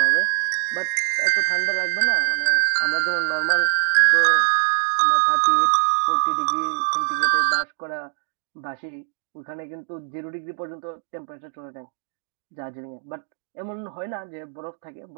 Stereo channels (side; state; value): left; silent; digital silence